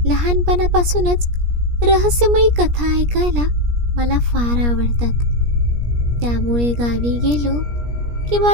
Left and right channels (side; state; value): left; late; 17 ms